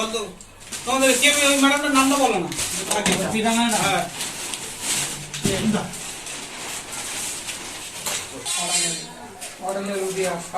নামটা বলো না।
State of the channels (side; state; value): both; identical; correlation 1.00